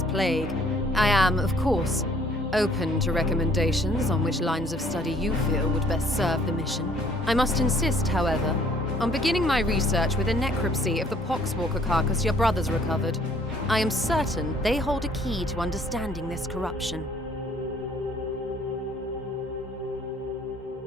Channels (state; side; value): normal; both; correlation 0.58